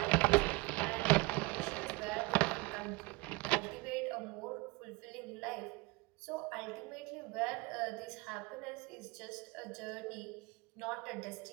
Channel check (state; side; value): quieter; left; 24.2 dB